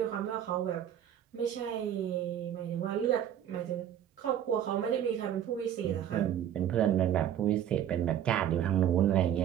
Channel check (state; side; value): quieter; left; 10.3 dB